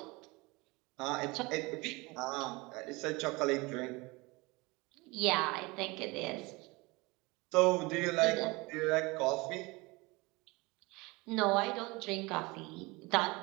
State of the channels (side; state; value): left; quieter; 24.4 dB